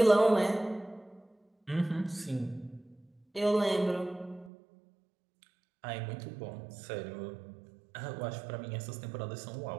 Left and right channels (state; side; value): drops out; left; at 4.5 s